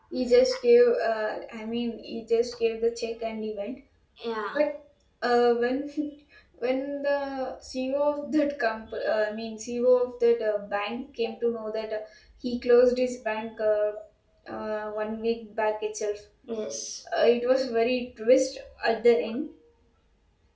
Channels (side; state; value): both; identical; correlation 1.00